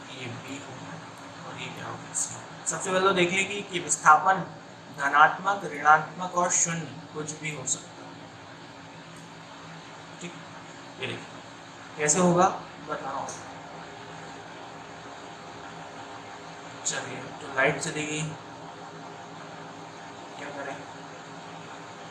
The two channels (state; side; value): identical; both; correlation 1.00